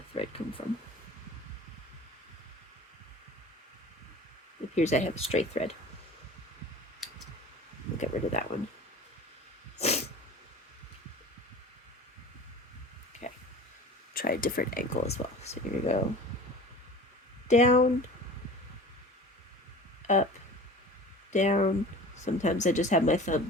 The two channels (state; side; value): normal; both; correlation 0.39